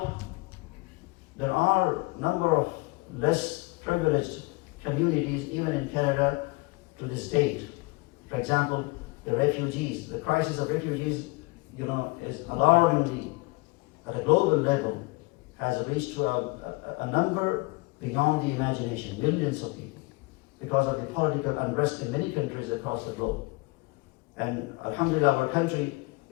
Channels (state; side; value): quieter; right; 25.8 dB